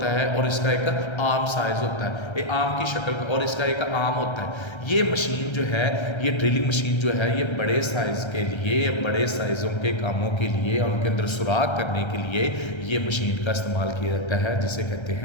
है और इसका एक आर्म साइज होता है, एक आर्म की शक्ल और इसका एक आर्म होता है। ये मशीन जो है, ये ड्रिलिंग मशीन जो है, ये बड़े साइज़ के लिए, बड़े साइज़ों के कामों के लिए, उनके अंदर सुराख करने के लिए ये मशीन का इस्तेमाल किया जाता है, जिसे कहते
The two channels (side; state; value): right; late; 1.3 ms